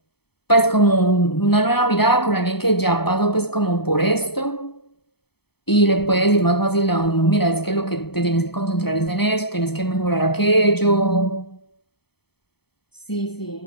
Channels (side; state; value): right; late; 0.97 ms